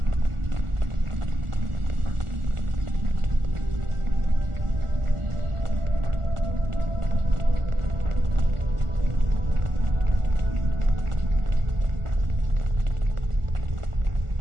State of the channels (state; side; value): late; left; 1.4 ms